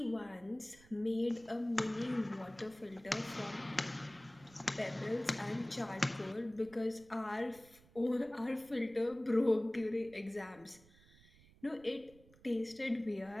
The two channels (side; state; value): right; noise; rumble, 25 dB below the sound